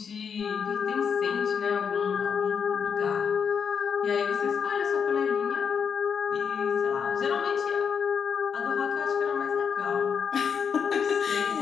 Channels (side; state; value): right; quieter; 6.7 dB